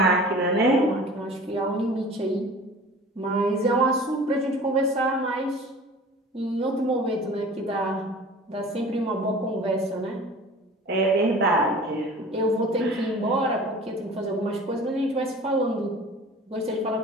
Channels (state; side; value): normal; both; correlation 0.42